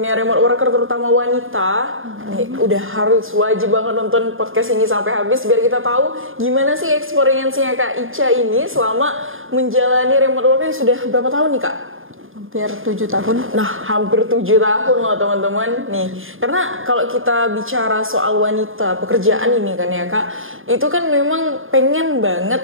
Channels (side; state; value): left; late; 0.59 ms